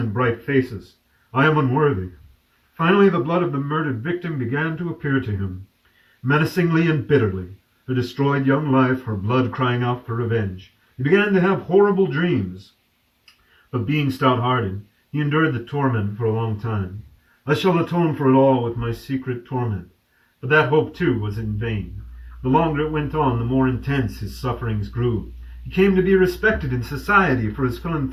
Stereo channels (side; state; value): both; identical; correlation 1.00